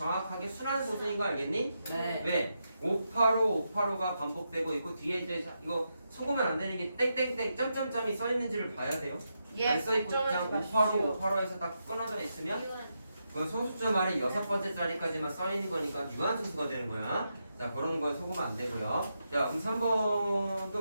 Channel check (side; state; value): both; inverted; correlation -0.85